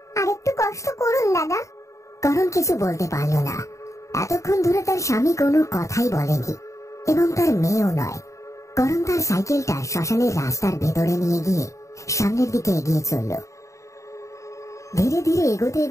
আর একটু কষ্ট করুন দাদা। করণ কিছু বলতে পারল না। এতক্ষণ ধরে তার স্বামী কোনো কথাই বলেনি, এবং তার মেয়েও নয়। করণ তার সাইকেলটা শ্মশানের রাস্তার ভেতরে নিয়ে গিয়ে সামনের দিকে এগিয়ে চলল। ধীরে ধীরে এগোতে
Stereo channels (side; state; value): right; late; 0.15 ms